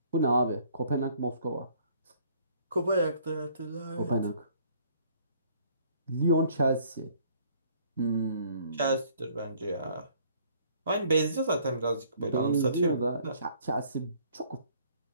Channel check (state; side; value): inverted; both; correlation -0.60